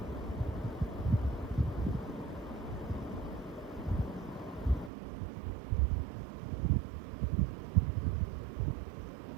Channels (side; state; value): left; drops out; at 4.9 s